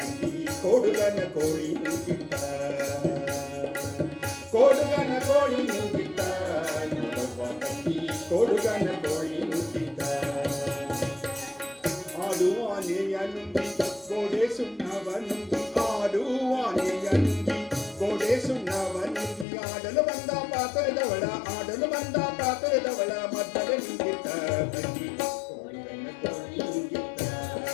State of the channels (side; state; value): right; drops out; at 19.5 s